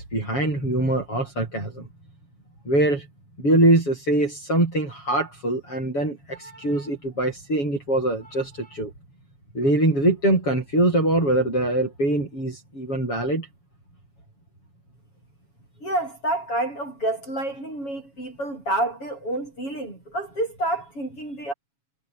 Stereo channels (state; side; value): late; right; 7.2 ms